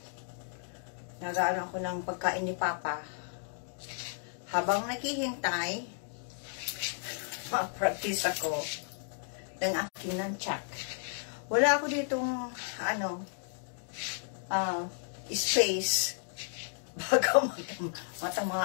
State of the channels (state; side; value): silent; right; digital silence